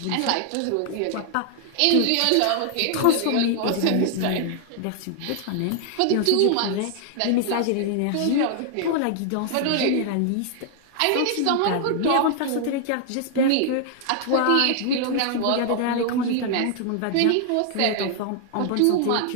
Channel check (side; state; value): both; different; correlation 0.00